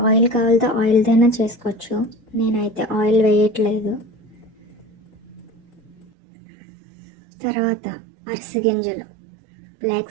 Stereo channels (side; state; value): left; drops out; at 6.1 s